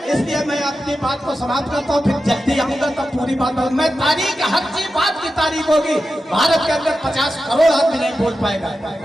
इसलिए मैं अपनी बात को समाप्त करता हूँ, फिर जल्दी आऊंगा तब पूरी बात होगी। मैं तारीख हर चीज बात की तारीख होगी, भारत के अंदर 50 करोड़ आदमी नहीं बोल पाएगा।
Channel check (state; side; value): normal; both; correlation 0.91